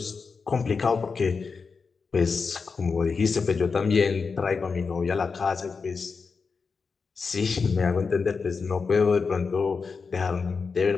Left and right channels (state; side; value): quieter; right; 5.0 dB